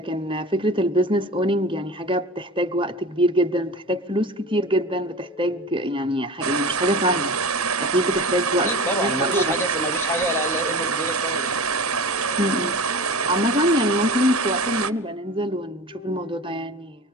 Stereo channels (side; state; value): both; normal; correlation 0.34